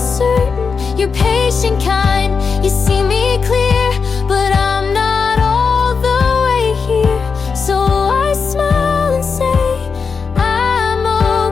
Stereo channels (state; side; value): quieter; right; 5.4 dB